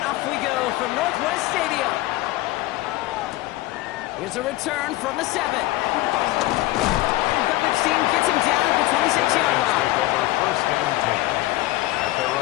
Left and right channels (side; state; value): right; quieter; 17.8 dB